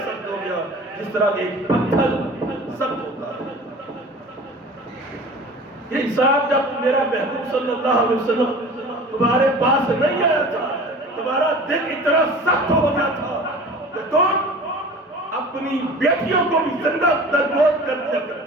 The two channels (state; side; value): normal; both; correlation 0.41